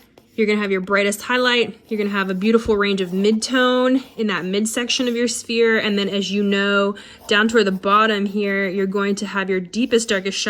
you're gonna have your brightest highlight, you're gonna have a beautiful range of midtone in that midsection of your sphere, and then as you know, down toward the bottom here, you're going to have your deepest, darkest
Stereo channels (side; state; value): both; identical; correlation 1.00